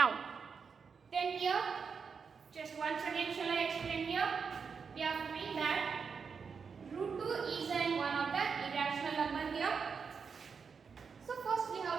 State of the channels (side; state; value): left; quieter; 5.8 dB